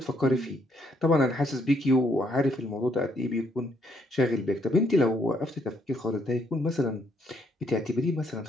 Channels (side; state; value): both; normal; correlation 0.71